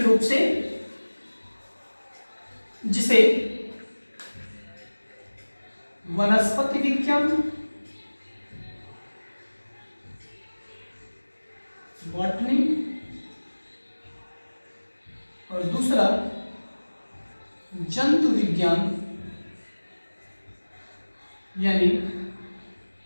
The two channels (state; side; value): inverted; both; correlation -1.00